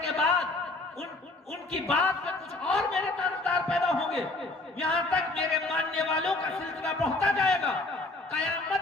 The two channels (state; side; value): quieter; right; 3.0 dB